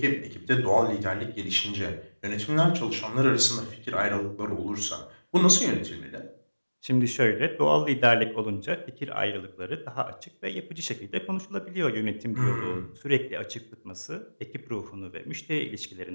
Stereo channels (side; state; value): both; inverted; correlation -1.00